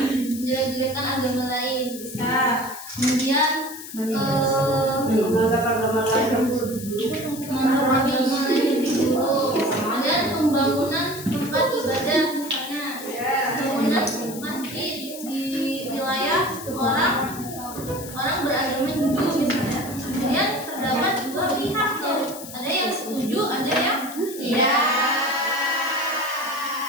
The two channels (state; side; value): noise; left; hiss, 13 dB below the sound